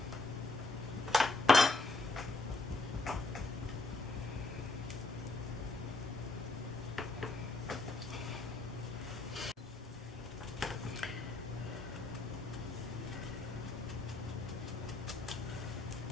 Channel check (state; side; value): quieter; right; 3.2 dB